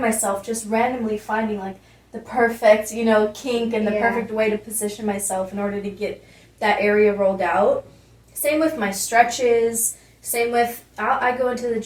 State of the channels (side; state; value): both; identical; correlation 1.00